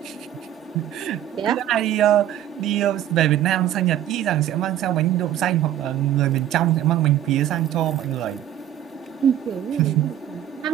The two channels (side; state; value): left; quieter; 11.6 dB